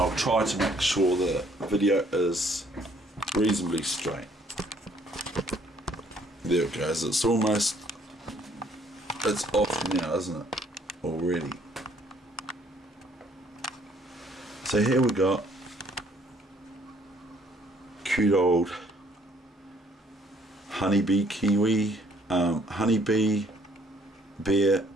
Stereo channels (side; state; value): both; normal; correlation 0.63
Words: try to make sure the video is reasonably straight. There it goes. It's off now, isn't it? Already. So here we got cute old honeybee kiwi, honeybee bear